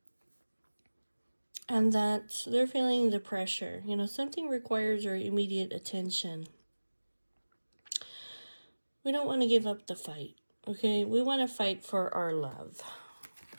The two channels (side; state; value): both; inverted; correlation -1.00